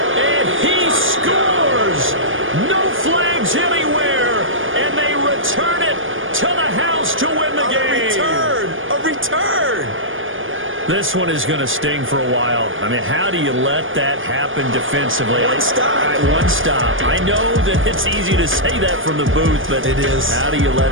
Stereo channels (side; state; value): left; late; 0.58 ms